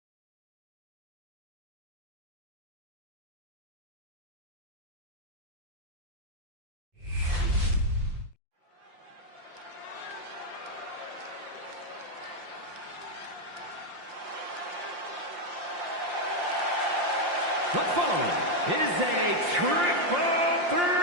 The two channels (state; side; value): late; left; 5.7 ms